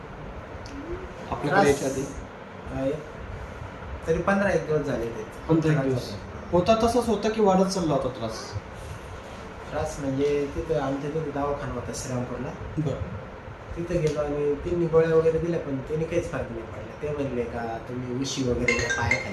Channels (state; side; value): identical; both; correlation 1.00